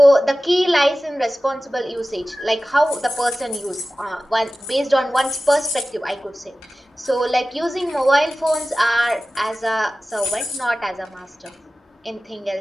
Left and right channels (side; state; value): both; normal; correlation 0.96